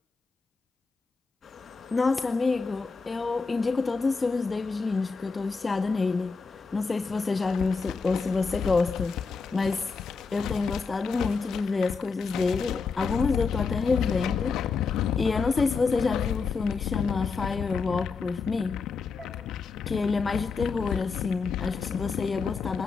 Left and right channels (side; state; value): right; quieter; 4.7 dB